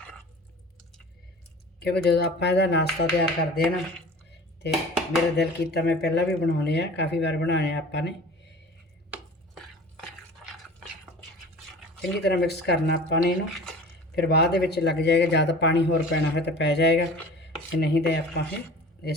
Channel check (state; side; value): normal; both; correlation 0.41